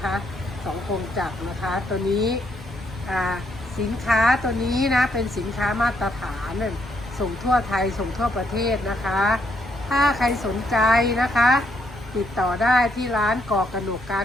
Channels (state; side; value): normal; both; correlation 0.74